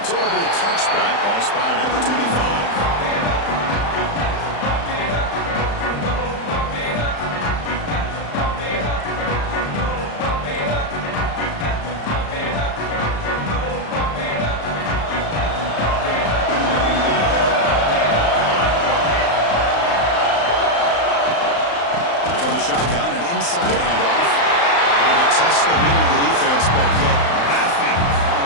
So it'll be a touchback. Ball spotted at the 25. From the shotgun, an inside handoff. Trying to test the middle of the defense, but yet nothing.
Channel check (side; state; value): right; late; 35 ms